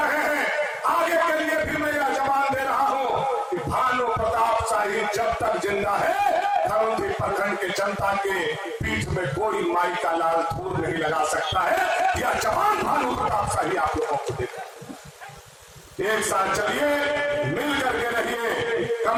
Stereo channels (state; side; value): identical; both; correlation 1.00